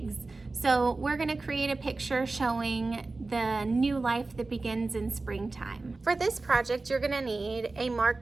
So we're gonna create a picture showing the new life that begins in springtime. For this project, you're gonna need a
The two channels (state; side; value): quieter; left; 3.5 dB